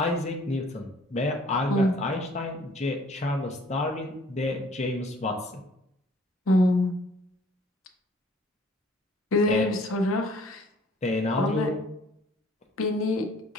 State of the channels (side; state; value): both; normal; correlation 0.56